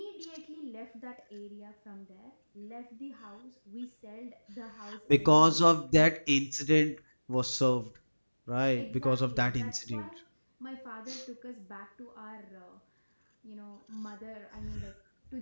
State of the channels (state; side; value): inverted; both; correlation -1.00